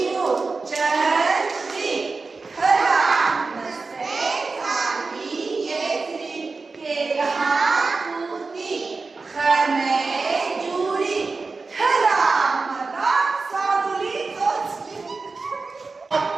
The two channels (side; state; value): left; quieter; 4.1 dB